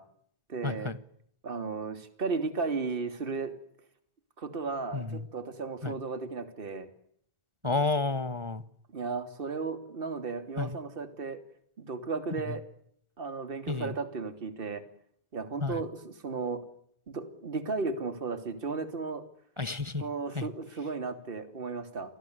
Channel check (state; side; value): late; left; 1.4 ms